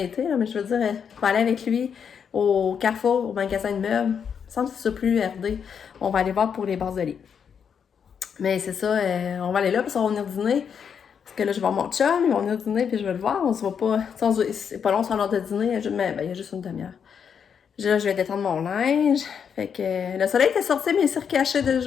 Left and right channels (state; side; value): quieter; right; 7.2 dB